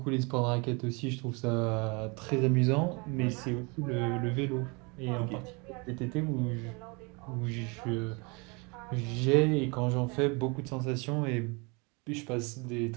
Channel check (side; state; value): left; quieter; 29.8 dB